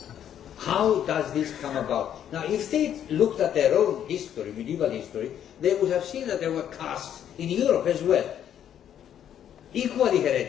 How does this come about? Now, if they looked at their own history, medieval history, they would have seen that there were castes in Europe as well, equally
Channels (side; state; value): right; quieter; 9.9 dB